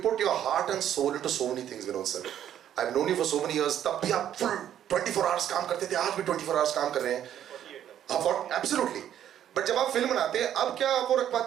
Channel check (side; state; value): left; quieter; 10.5 dB